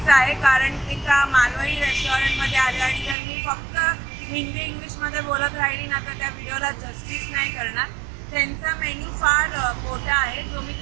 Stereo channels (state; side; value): drops out; left; at 3.2 s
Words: आहे, कारण एका मालवणी रेस्टॉरंटमध्ये आले आणि जर मी फक्त हिंदी इंग्लिशमध्ये बोलत राहिली ना तर त्या व्हिडिओला जस्टिस नाही करणार। त्यांचा मेन्यू फार मोठा आहे, जो मी